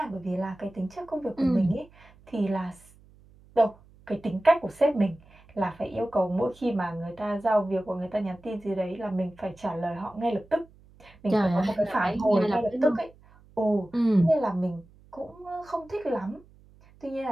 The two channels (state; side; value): noise; right; hum, 26 dB below the sound